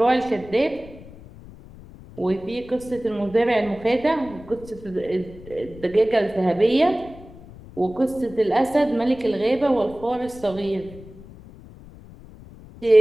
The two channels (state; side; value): noise; left; rumble, 19 dB below the sound